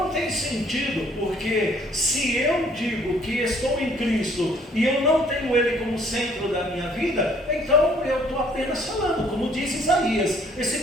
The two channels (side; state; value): both; normal; correlation 0.60